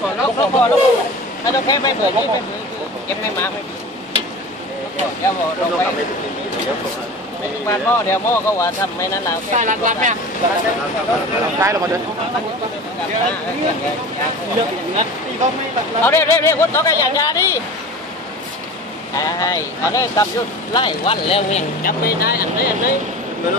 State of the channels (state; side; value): normal; both; correlation 0.35